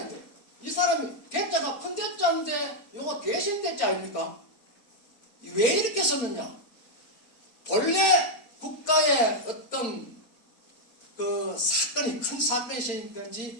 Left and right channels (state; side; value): late; right; 4.4 ms